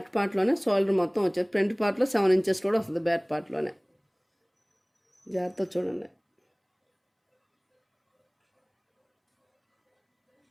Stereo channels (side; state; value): both; identical; correlation 1.00